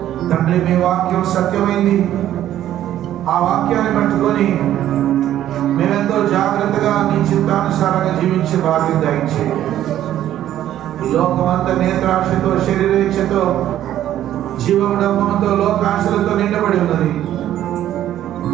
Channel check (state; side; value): quieter; left; 12.1 dB